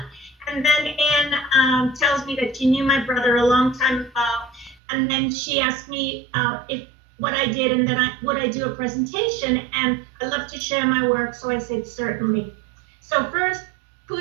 and then Anne tells me that she knew my brother a long time ago. And then she asked me if what I did, and then would I do a presentation, and I love to share my work, so I said certainly. So first,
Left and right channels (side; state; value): left; drops out; at 4.8 s